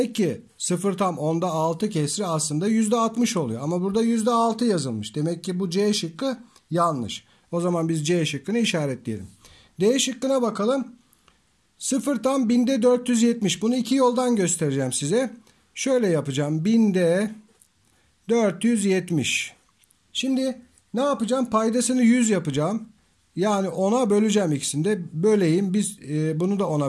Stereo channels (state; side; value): identical; both; correlation 1.00